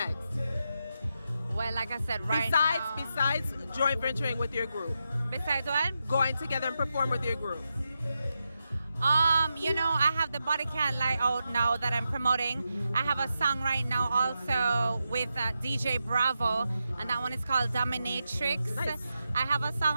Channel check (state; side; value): inverted; both; correlation -0.87